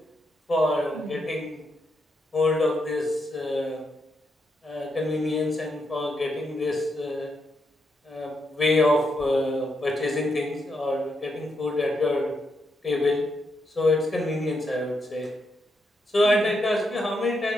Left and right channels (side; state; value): both; normal; correlation 0.81